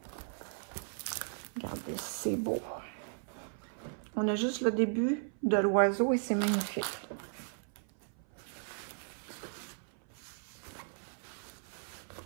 Regardez, c'est beau. On a juste le début de l'oiseau et c'est magnifique.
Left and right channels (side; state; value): left; silent; 54 dB below the other